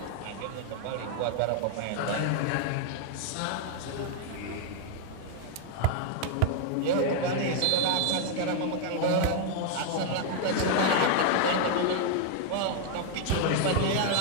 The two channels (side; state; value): both; different; correlation 0.00